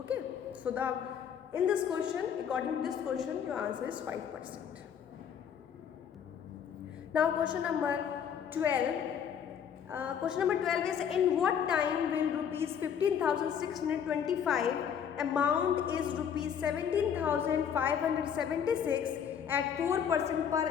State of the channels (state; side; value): quieter; right; 8.1 dB